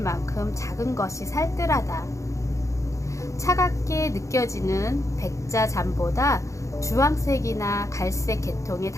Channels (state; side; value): late; right; 0.15 ms